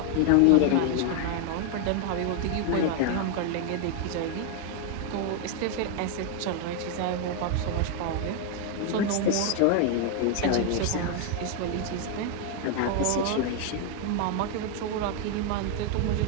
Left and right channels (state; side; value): different; both; correlation 0.01